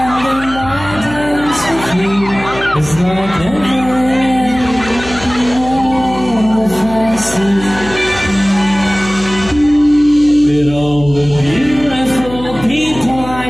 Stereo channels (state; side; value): noise; left; hum, 13 dB below the sound